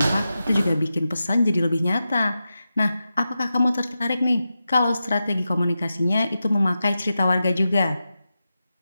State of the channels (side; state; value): both; inverted; correlation -0.91